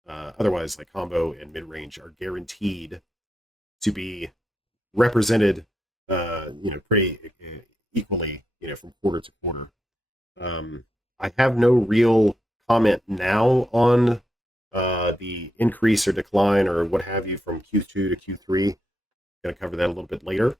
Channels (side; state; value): both; normal; correlation 0.84